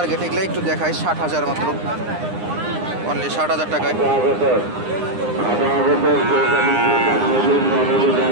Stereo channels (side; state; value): left; late; 9.8 ms